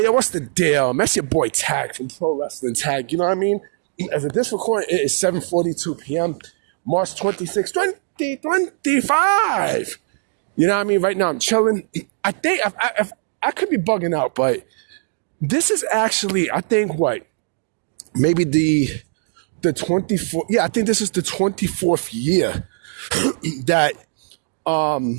yo, what's the deal? That's your boy Tag from Pro Wrestling Tag. You know what I mean? As of this recording, it is 7:42 p.m., March 26, 2025. You know what I mean? Right now, I'm chilling. I think I could be bugging out, but this is actually, I think, what? Maybe the 24th. Yeah, I think this is the 24th year that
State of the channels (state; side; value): silent; left; digital silence